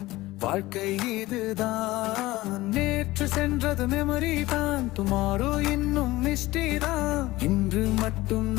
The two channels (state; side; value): quieter; right; 18.5 dB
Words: வாழ்க்கை இதுதான். நேற்று சென்றது மெமரி தான், டுமாரோ இன்னும் மிஸ்டி தான். இன்று மட்டும்